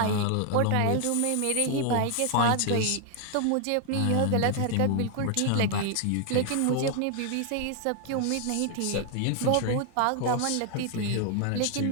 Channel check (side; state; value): both; different; correlation 0.00